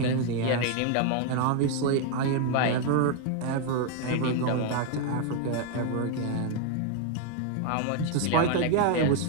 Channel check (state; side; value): different; both; correlation 0.01